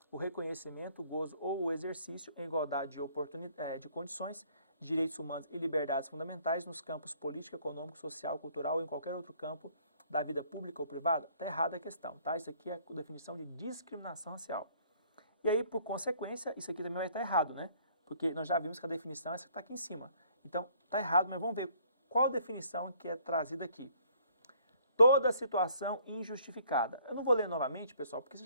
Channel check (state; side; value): inverted; both; correlation -0.61